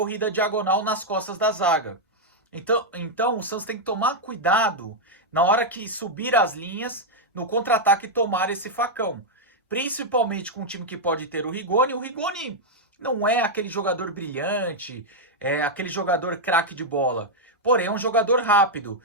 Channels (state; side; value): normal; both; correlation -0.03